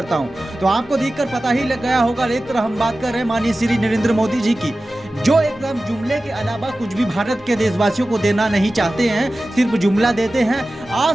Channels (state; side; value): normal; both; correlation 0.96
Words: हूँ। तो आपको देखकर पता ही लग गया होगा। एक तरह हम बात कर रहे हैं माननीय श्री नरेंद्र मोदी जी की, जो एकदम जुमले के अलावा कुछ भी भारत के देशवासियों को देना नहीं चाहते हैं, सिर्फ जुमला देते हैं।